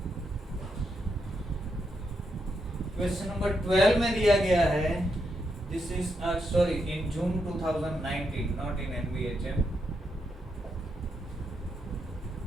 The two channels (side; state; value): both; normal; correlation 0.82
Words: Question number 12 में दिया गया है. This is sorry in June 2019, not in NBHM.